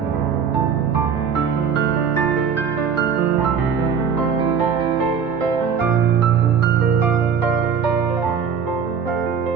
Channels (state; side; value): quieter; left; 6.8 dB